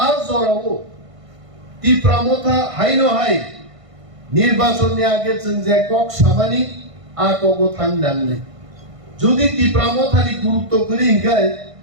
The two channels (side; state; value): left; late; 1.5 ms